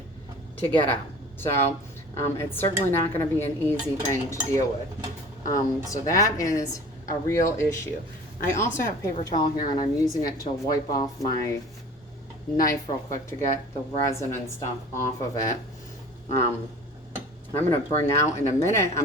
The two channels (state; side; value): normal; both; correlation 0.43